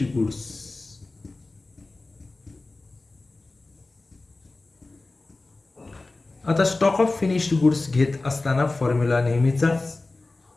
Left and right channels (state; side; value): quieter; right; 3.2 dB